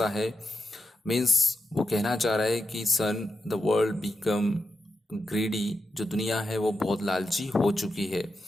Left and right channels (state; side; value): normal; both; correlation 0.88